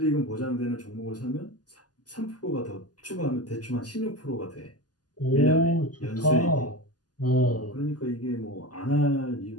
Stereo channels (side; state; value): right; late; 0.69 ms